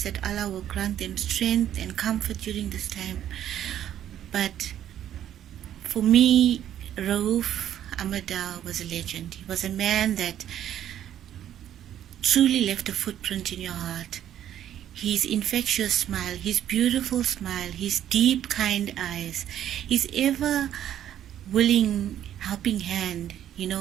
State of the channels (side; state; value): left; quieter; 10.9 dB